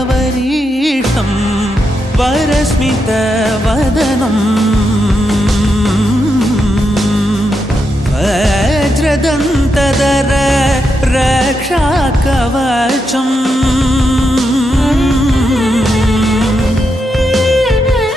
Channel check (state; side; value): normal; both; correlation 0.84